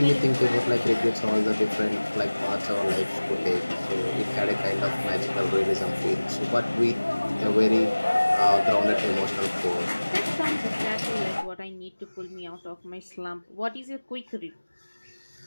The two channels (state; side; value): inverted; both; correlation -1.00